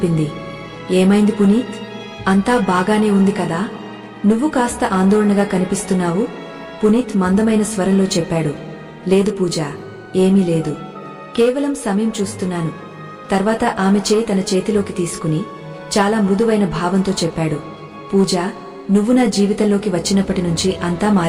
ఏమైంది పునీత్? అంతా బాగానే ఉంది కదా? నువ్వు కాస్త ఆందోళనగా కనిపిస్తున్నావు. పునీత్ మందమైన స్వరంలో చెప్పాడు, లేదు పూజ, ఏమీ లేదు. కేవలం సమయం చూస్తున్నాను. తర్వాత ఆమె చేయి తన చేతిలోకి తీసుకుని చాలా మృదువైన భావంతో చెప్పాడు, పూజ, నువ్వు నా జీవితంలోకి వచ్చినప్పటి నుంచి అంతా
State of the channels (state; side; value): identical; both; correlation 1.00